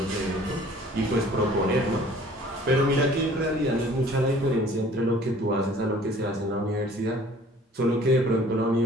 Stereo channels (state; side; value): normal; both; correlation 0.52